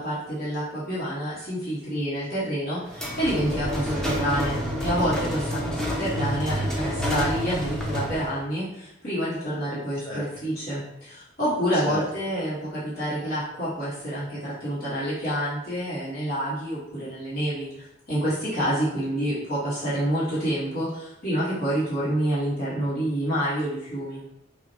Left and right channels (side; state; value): both; normal; correlation 0.54